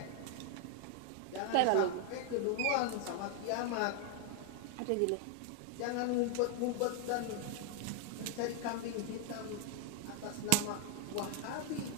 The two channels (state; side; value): different; both; correlation 0.00